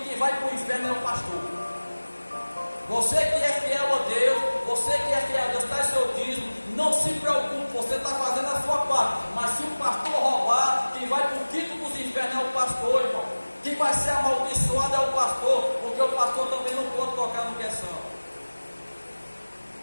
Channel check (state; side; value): inverted; both; correlation -1.00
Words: vai para o inferno é o pastor. Você que é fiel a Deus, você que é fiel a Deus, está em seu dízimo, não se preocupe, você está fazendo a sua parte. Mas se o pastor roubar, quem vai para o quinto dos infernos é o pastor, irmão. Quem vai ser amaldiçoado é o pastor, porque o pastor também não pode tocar no que é santo.